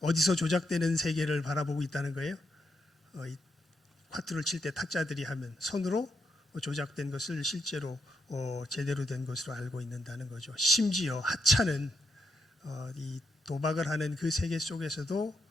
어디서 조작되는 세계를 바라보고 있다는 거예요. 화투를 칠 때 탁자들이 하면 손으로 조작된 것을 실제로 제대로 된 것으로 알고 있는다는 거죠. 심지어 하찮은 이 도박을 하는 그 세계 속에서도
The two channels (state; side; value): normal; both; correlation 0.81